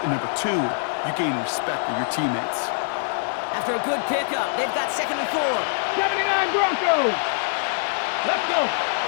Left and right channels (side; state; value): right; silent; digital silence